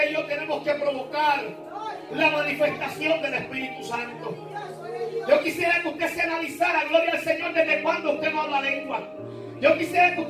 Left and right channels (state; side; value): identical; both; correlation 1.00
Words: y yo tenemos que provocar la manifestación del Espíritu Santo. Yo quisiera que usted se analizara, gloria al Señor, desde cuándo usted no habla lengua. Yo quisiera que